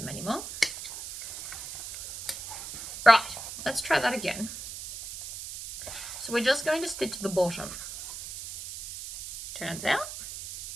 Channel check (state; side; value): noise; right; hiss, 10 dB below the sound